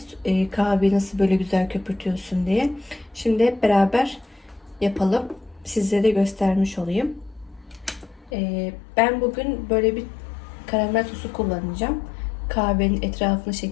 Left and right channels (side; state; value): right; drops out; at 8.3 s